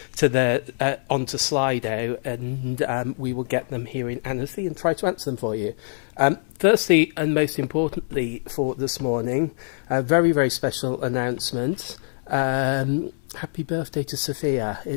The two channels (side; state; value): right; silent; digital silence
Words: onto Slido, and we will get them here in Annecy and try to answer them for you. Firstly, and most importantly for this morning, a very, very special announcement. Happy birthday to Sophia.